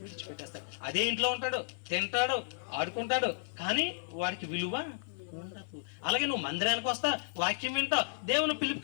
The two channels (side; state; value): right; silent; 56 dB below the other